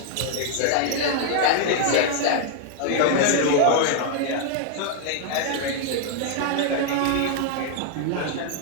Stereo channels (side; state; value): both; different; correlation 0.00